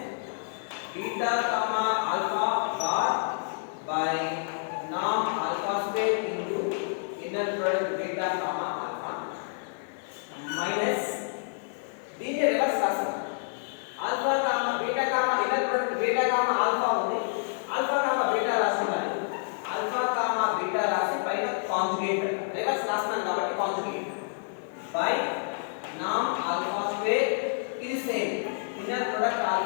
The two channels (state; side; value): silent; right; 59 dB below the other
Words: beta comma alpha bar by norm alpha square into inner product beta comma alpha minus దీన్ని reverse రాస్తాం alpha comma beta comma inner product beta comma alpha ఉంది alpha comma beta రాస్తున్నాను alpha comma beta రాసి పైన conjugate reverse రాస్తున్నాను కాబట్టి conjugate by నామ్ alpha square ఇది same inner product